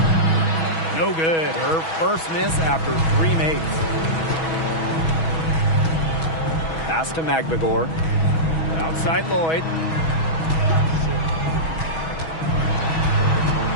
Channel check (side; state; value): right; late; 6.2 ms